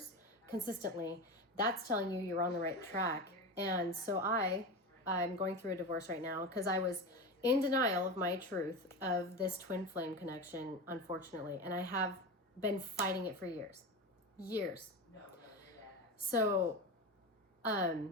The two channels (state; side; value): normal; both; correlation 0.23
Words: consistently, that's telling you you're on the right track. And so I'm going through a divorce right now because I was in denial of my truth of this twin flame connection, unfortunately, and I have been fighting it for years. So,